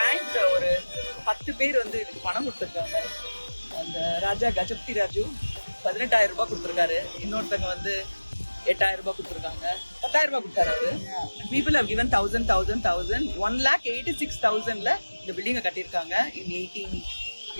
ஒரு 10 பேர் வந்து இதுக்கு பணம் கொடுத்துருக்காங்க. அந்த ராஜா கஜபதி ராஜு 18,000 ரூபாய் கொடுத்துருக்காரு. இன்னொருத்தங்க வந்து 8,000 ரூபாய் கொடுத்துருக்காங்க. 10,000 ரூபாய் கொடுத்தாரு அவரு. People have given 1,000, 1,86,000ல இந்த பில்டிங்கை கட்டியிருக்காங்க. in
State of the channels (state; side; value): inverted; both; correlation -1.00